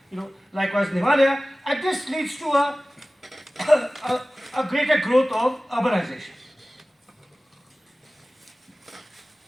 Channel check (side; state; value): both; normal; correlation 0.97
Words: in Himalaya, and this leads to a greater growth of urbanization.